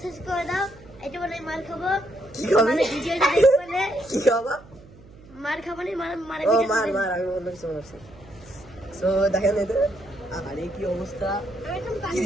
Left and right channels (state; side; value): noise; right; hum, 22 dB below the sound